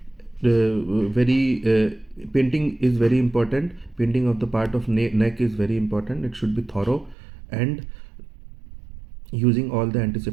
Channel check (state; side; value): drops out; left; at 7.2 s